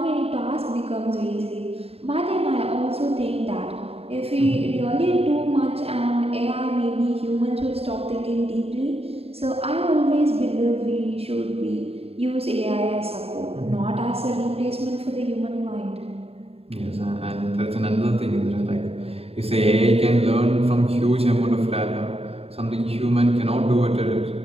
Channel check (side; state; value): left; late; 0.29 ms